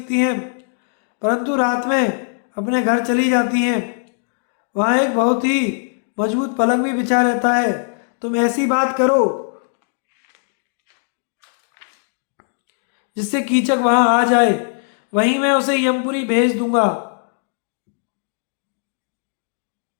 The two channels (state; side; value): silent; right; digital silence